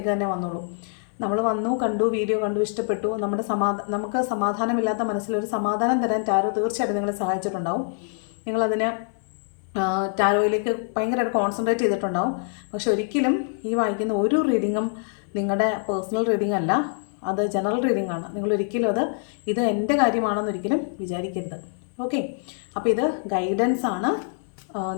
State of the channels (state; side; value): silent; right; 62 dB below the other